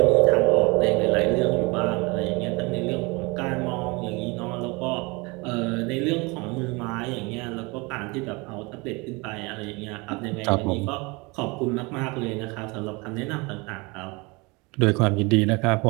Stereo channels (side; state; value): left; quieter; 26.6 dB